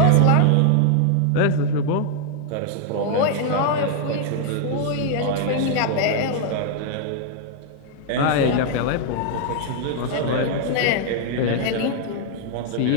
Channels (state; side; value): different; both; correlation 0.00